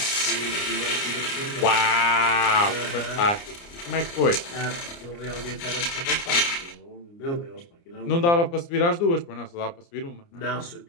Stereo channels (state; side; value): late; right; 29 ms